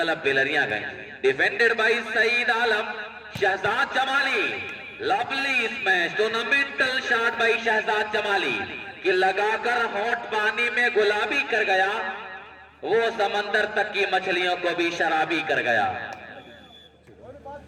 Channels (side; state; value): both; identical; correlation 1.00